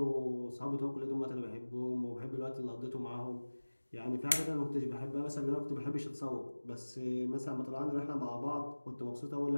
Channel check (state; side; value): inverted; both; correlation -1.00